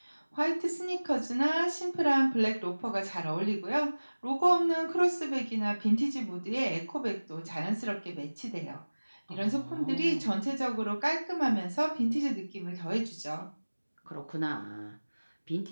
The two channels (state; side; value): inverted; both; correlation -1.00